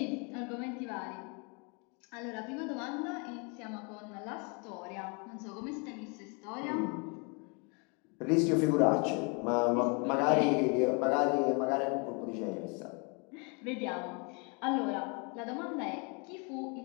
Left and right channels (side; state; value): right; quieter; 33.4 dB